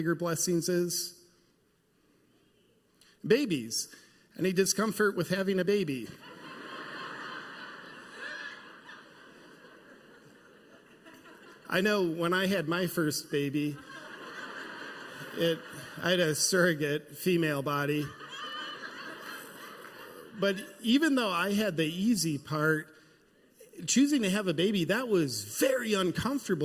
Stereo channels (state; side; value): identical; both; correlation 1.00